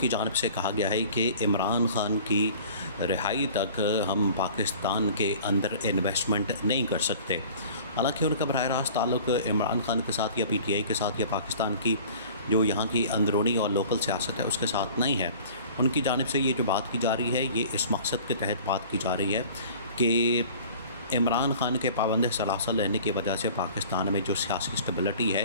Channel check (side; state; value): both; inverted; correlation -0.46